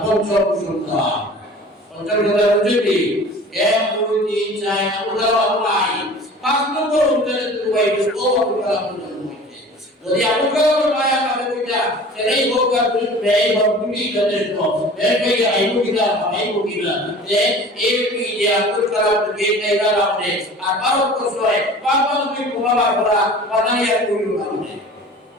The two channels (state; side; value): normal; both; correlation 0.42